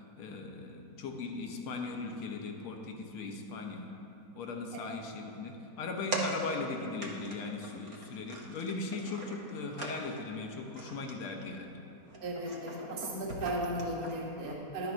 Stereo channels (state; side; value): late; left; 4.2 ms